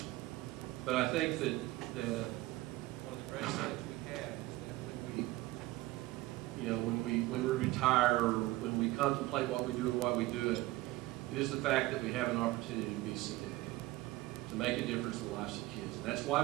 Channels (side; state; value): left; quieter; 18.5 dB